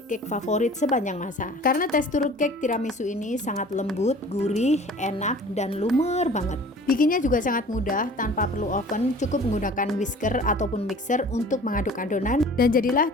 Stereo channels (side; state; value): both; normal; correlation 0.46